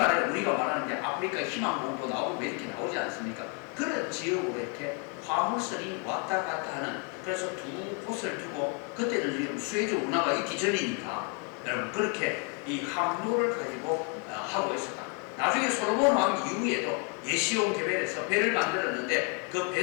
우리가 말하는 게 아프리카 희망봉도 나오고 왜 이렇게 나오지 않습니까? 그런 지역으로 이렇게 화물선이 왔다 갔다 하는, 그래서 두 곳을 두고, 그때는 지금 수에즈 운하가 있기 전이니까 여러분 그렇게 이 항로를 가지고 하고 있었다. 나중에 솔로몬 왕 이후에도 예시용 계획에서 배를 만들었는데 그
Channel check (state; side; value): quieter; right; 31.4 dB